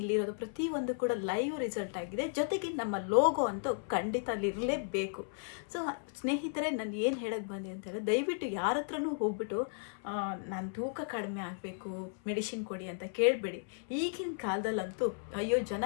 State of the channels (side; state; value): right; silent; 55 dB below the other